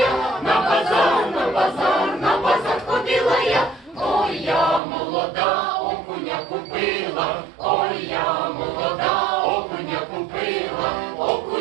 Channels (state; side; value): drops out; left; at 4.8 s